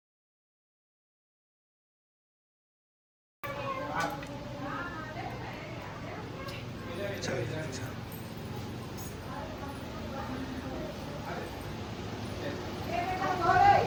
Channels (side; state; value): both; identical; correlation 1.00